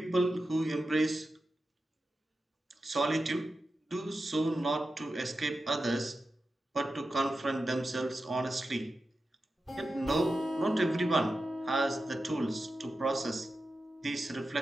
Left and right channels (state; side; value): normal; both; correlation 0.91